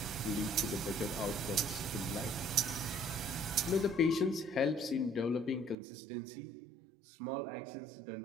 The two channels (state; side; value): drops out; left; at 5.8 s